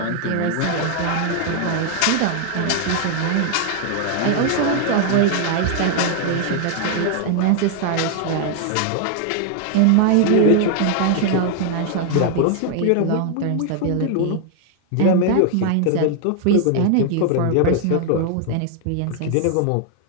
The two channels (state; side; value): different; both; correlation 0.00